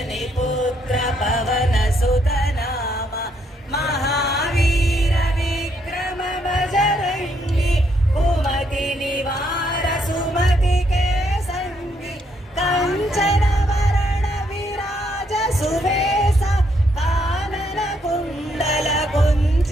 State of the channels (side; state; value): both; normal; correlation 0.74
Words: पुत्र पवन सुत नामा। महावीर विक्रम बजरंगी, कुमति निवार सुमति के संगी। कंचन वरण विराज सुबेसा, कानन कुंडल